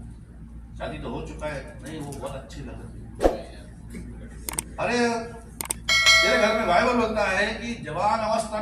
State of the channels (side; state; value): both; identical; correlation 1.00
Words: शादी तो हो चुका है, नहीं वो बहुत अच्छी लगती है। अरे तेरे घर में बाइबल बोलता है कि जवान